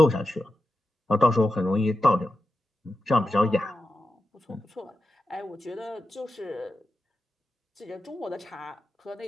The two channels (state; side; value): normal; both; correlation 0.90